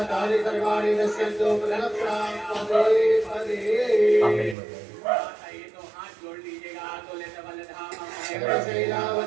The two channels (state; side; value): drops out; left; at 4.5 s